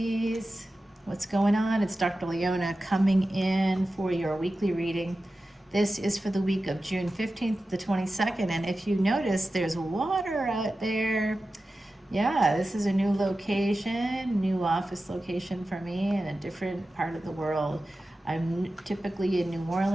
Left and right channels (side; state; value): both; normal; correlation 0.94